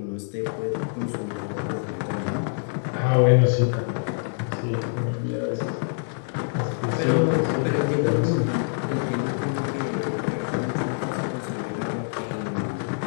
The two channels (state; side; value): silent; right; 61 dB below the other